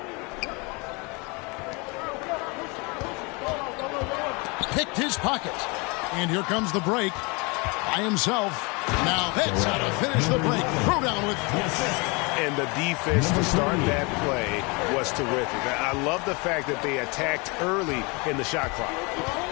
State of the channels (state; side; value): quieter; right; 29.0 dB